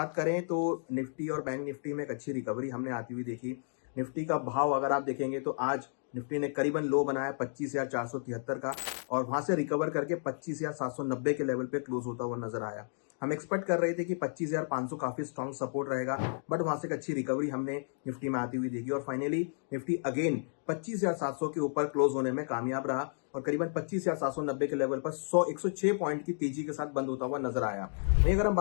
करें तो निफ्टी और बैंक निफ्टी में एक अच्छी रिकवरी हमने आती हुई देखी। निफ्टी का भाव अगर आप देखेंगे तो आज निफ्टी ने करीबन लो बनाया 25,473 का और वहां से रिकवर करके 25,790 के लेवल पे क्लोज होता हुआ नजर आया। हम एक्सपेक्ट कर रहे थे कि 25,500 काफी स्ट्रॉन्ग सपोर्ट रहेगा, बट वहां से एक अच्छी रिकवरी हमने निफ्टी में आती हुई देखी और फाइनली निफ्टी अगेन 25,700 के ऊपर क्लोज होने में कामयाब रहा और करीबन 25,790 के लेवल पर 106 पॉइंट की तेजी के साथ बंद होता हुआ नजर आया। वहीं अगर हम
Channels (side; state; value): right; silent; digital silence